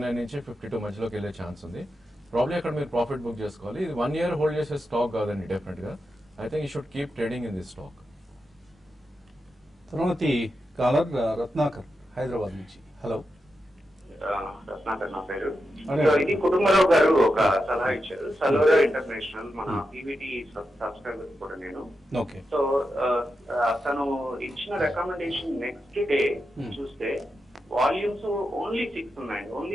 నుంచి 52 మధ్యలోకి వెళ్ళే ఛాన్స్ ఉంది. ప్రాబ్లీ అక్కడ మీరు ప్రాఫిట్ బుక్ చేసుకోవాలి. ఇది 1 year హోల్డ్ చేసే స్టాక్ కాదండి డెఫినెట్ గా. I think you should keep trading in this stock. తర్వాతి కాలర్ రత్నాకర్ హైదరాబాద్ నుంచి. హలో, రత్నాకర్ నా పేరు. అదే. సో ఇది కుటుంబరావు గారు ఒక సలహా ఇచ్చారు, సలోరా ఇంటర్నేషనల్, మన పీవీటీ సబ్స్క్రైబర్ కూడా నేను. ఓకే. సో తను ఇచ్చిన రికమెండేషన్ నెక్స్ట్ డే చూస్తే వాల్యూమ్స్ ఓన్లీ 6 ఉన్నాయండి,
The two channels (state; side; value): normal; both; correlation 0.88